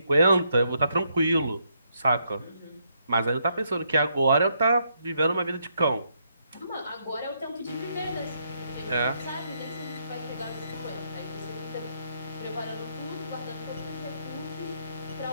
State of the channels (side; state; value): both; inverted; correlation -0.76